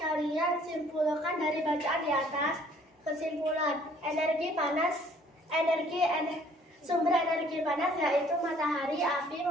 simpulkan dari bacaan di atas? Kesimpulan, energi panas, sumber energi panas yaitu matahari, api,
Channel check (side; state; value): both; normal; correlation 0.59